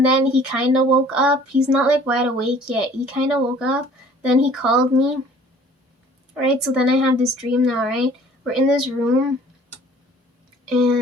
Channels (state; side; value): normal; both; correlation 0.52